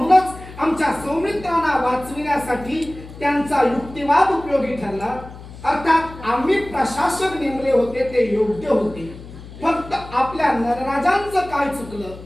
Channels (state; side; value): noise; left; hum, 16 dB below the sound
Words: आमच्या सौमित्रांना वाचविण्यासाठी त्यांचा युक्तिवाद उपयोगी ठरला. अर्थात आम्ही प्रशासक नेमले होते ते योग्य होते. फक्त आपल्या नरराजांचं काय चुकलं?